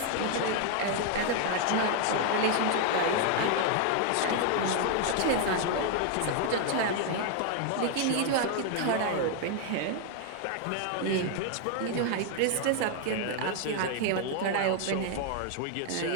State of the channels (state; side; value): different; both; correlation 0.00